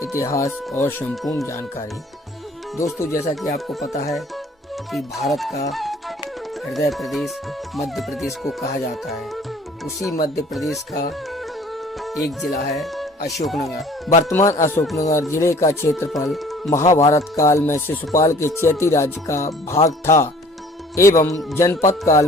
इतिहास और संपूर्ण जानकारी। दोस्तों, जैसा कि आपको पता है कि भारत का हृदय प्रदेश मध्य प्रदेश को कहा जाता है, उसी मध्य प्रदेश का एक जिला है अशोकनगर। वर्तमान अशोकनगर जिले का क्षेत्रफल महाभारत काल में शिशुपाल के चैती राज्य का भाग था एवं जनपद काल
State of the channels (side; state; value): both; normal; correlation 0.52